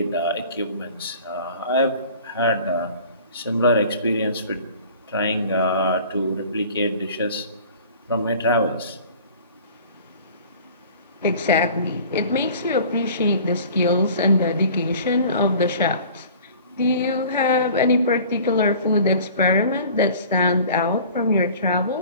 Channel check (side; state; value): both; inverted; correlation -0.46